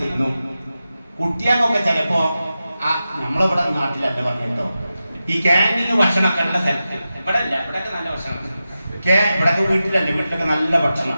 തിന്നു. കുട്ടിയാക്കൊക്കെ ചിലപ്പോ നമ്മളിവിടെ നാട്ടിലല്ല പറഞ്ഞിട്ടോ, ഈ ക്യാൻറ്റീന് ഭക്ഷണമൊക്കെ ഉള്ള സ്ഥലത്ത്, ഇവിടെ അല്ല, ഇവിടെയൊക്കെ നല്ല ഭക്ഷണം, ഇവിടെയൊക്കെ വീട്ടിലല്ല, വീട്ടിലൊക്കെ നല്ല ഭക്ഷണം.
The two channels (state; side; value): inverted; both; correlation -0.92